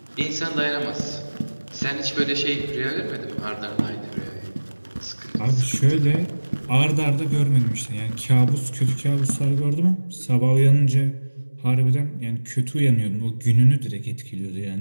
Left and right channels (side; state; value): both; inverted; correlation -1.00